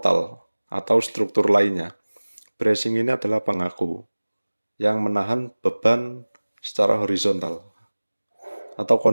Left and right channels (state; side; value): inverted; both; correlation -1.00